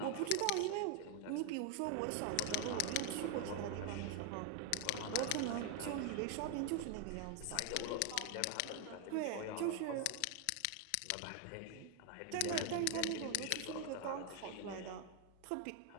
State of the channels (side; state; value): both; different; correlation 0.01